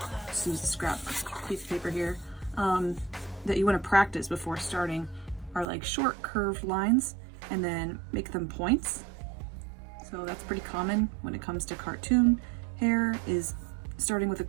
just use a scrap piece of paper here, that you want to practice before starting are like short curved lines and then make them points. So that's pretty common when it comes to cartoon hair, is starting with a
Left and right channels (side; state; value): left; drops out; at 5.7 s